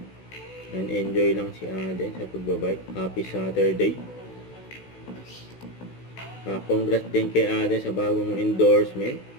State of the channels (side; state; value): right; late; 16 ms